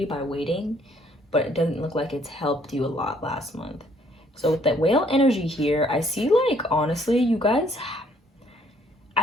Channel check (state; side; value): normal; both; correlation 0.64